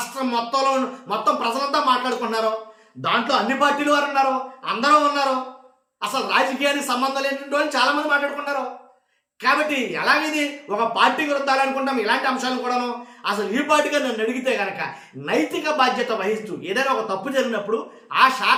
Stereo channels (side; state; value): both; identical; correlation 1.00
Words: మొత్తం ప్రజలంతా మాట్లాడుకుంటున్నారు. దాంట్లో అన్ని పార్టీలు వారు ఉన్నారు, అందరూ ఉన్నారు. అసలు రాజకీయానికి సంబంధం లేనటువంటి వాళ్ళు చాలా మంది మాట్లాడుకుంటారు. కాబట్టి ఎలాగైంది? ఒక పార్టీకి వృద్ధాలనుకుంటాం ఇలాంటి అంశాలు కూడాను. అసలు ఈ పార్టీగా నన్ను అడిగితే కనుక నైతిక బాధ్యత వహిస్తూ ఏదైనా ఒక తప్పు జరిగినప్పుడు ఆ